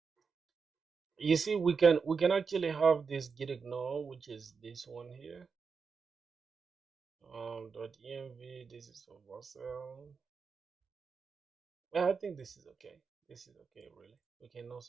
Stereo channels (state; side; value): quieter; left; 5.4 dB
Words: you see, we can actually have this git ignore, which is this one here. .env. This is for Vercel. Yeah, I think this is okay. This is okay, really. We can